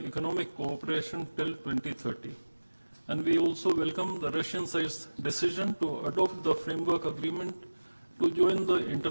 economic cooperation till 2030. And we also welcome the Russian side's decision to adopt the framework agreement to join the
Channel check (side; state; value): both; inverted; correlation -1.00